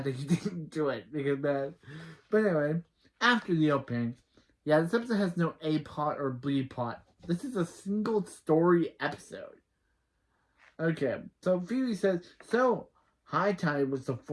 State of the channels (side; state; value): both; identical; correlation 1.00